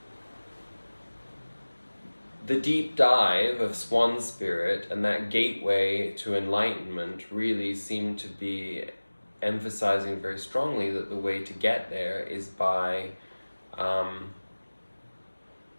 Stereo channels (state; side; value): inverted; both; correlation -1.00